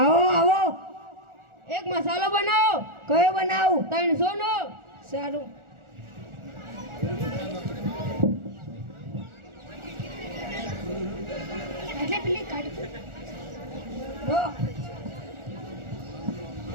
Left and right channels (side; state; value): left; late; 1.4 ms